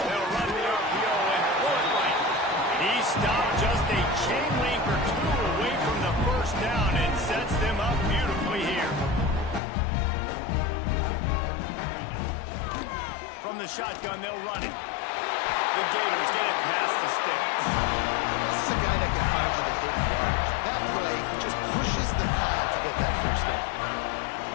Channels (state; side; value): drops out; right; at 9.6 s